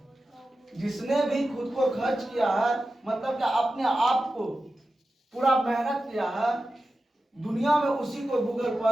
जिसने भी खुद को खर्च किया है मतलब कि अपने आप को पूरा मेहनत किया है, दुनिया में उसी को गूगल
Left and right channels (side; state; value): both; normal; correlation 0.93